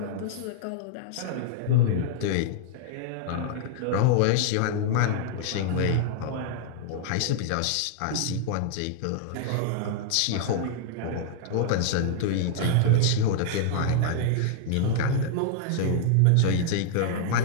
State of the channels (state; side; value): different; both; correlation -0.01